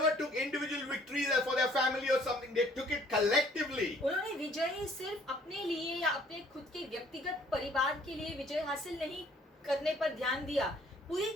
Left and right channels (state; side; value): normal; both; correlation 0.59